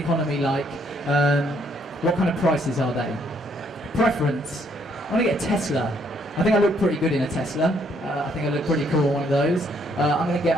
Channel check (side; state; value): both; normal; correlation 0.69